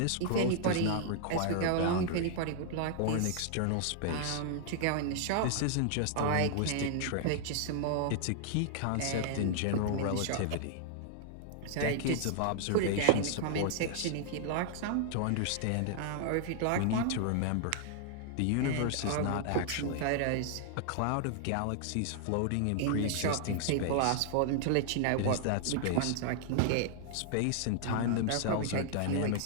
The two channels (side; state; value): both; different; correlation -0.01